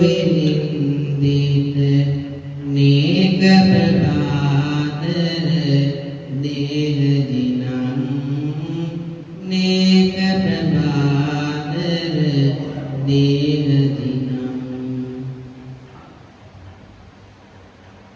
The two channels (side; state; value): both; identical; correlation 1.00